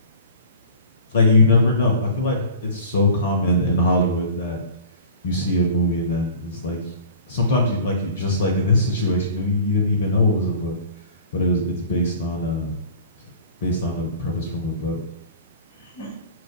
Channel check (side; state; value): both; inverted; correlation -0.43